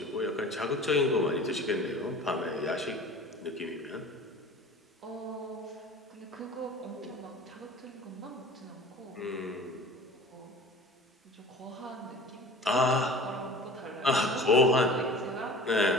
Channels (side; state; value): both; normal; correlation 0.41